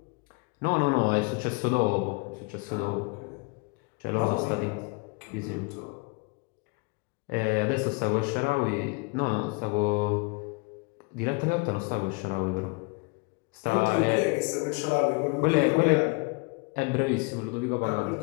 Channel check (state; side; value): quieter; right; 29.0 dB